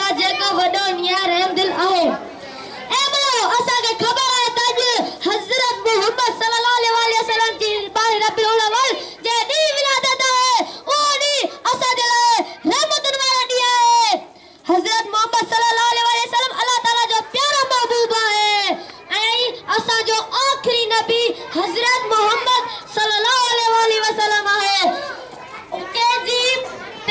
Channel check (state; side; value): identical; both; correlation 1.00